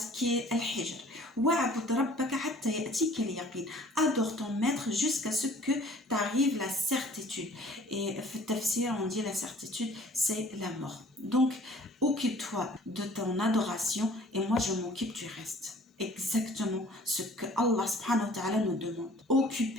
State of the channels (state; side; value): normal; both; correlation 0.52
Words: qui est Al-Hijr. Wa'bud rabbaka hatta ya'tika al-yaqin. Adore ton maître jusqu'à ce que t'arrive la certitude. Et fi tafsir, on dit la certitude, c'est la mort. Donc, occupe-toi de ton adoration et moi je m'occupe du reste. Exactement ce que Allah subhanahu wa ta'ala nous demande.